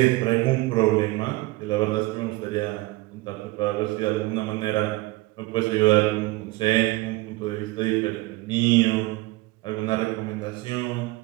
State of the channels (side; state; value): left; quieter; 21.0 dB